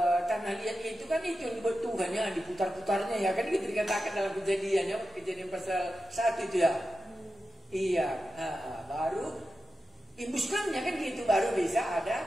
tanah liat itu kan itu yang dibuat Tuhannya, diputar-putarnya ya kan, gitu dikatakan dalam kejadian pasal 1 itu ya. Iya, baru imbuskannya kan gitu, baru bisa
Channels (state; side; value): normal; both; correlation 0.91